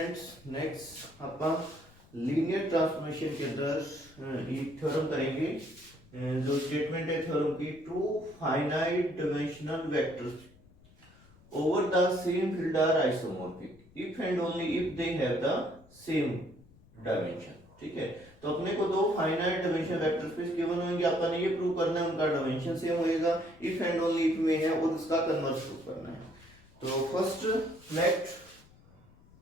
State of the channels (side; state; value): left; noise; rumble, 26 dB below the sound